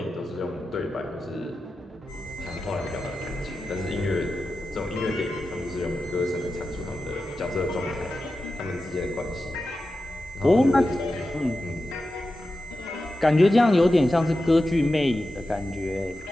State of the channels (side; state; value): both; normal; correlation 0.92